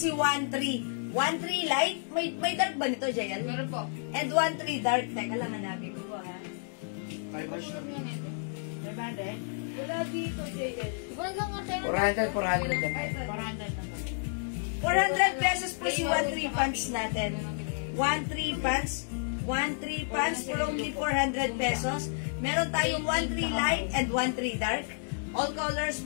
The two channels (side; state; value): right; silent; digital silence